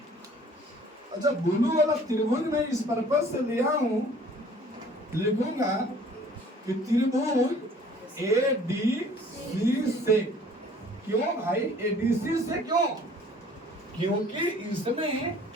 अच्छा, ब्लू वाला त्रिभुज में इस पर्पज से लिया हूं, लिखूंगा कि त्रिभुज ए डी सी से। क्यों भाई ए डी सी से? क्यों? क्योंकि इसमें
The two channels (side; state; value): both; normal; correlation 0.53